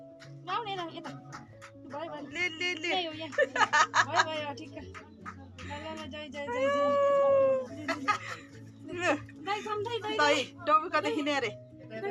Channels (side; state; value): both; identical; correlation 1.00